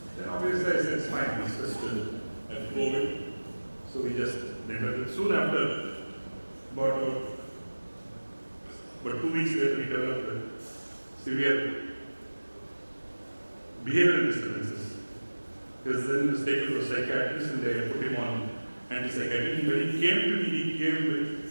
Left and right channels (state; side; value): inverted; both; correlation -1.00